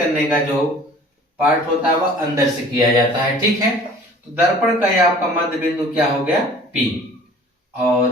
का जो पार्ट होता है वह अंदर से किया जाता है। ठीक है, तो दर्पण का यह आपका मध्य बिंदु क्या हो गया, P। और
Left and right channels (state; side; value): normal; both; correlation 0.48